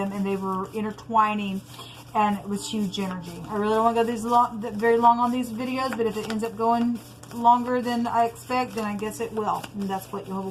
and they were intertwining, and it was huge energy. I really don't want to go very long on these videos, but if it ends up going longer than I expect, then I guess it will. And that's what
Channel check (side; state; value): both; identical; correlation 1.00